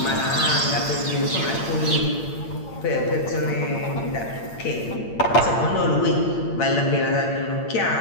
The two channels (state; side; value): late; right; 8.7 ms